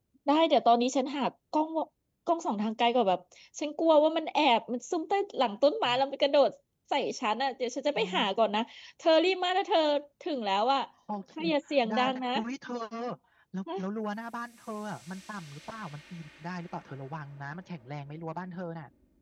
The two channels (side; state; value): both; identical; correlation 1.00